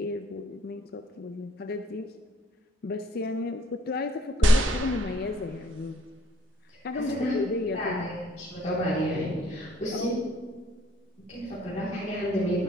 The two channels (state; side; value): normal; both; correlation 0.62